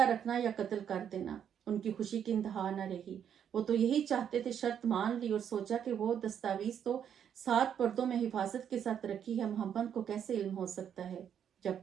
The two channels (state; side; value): quieter; left; 8.7 dB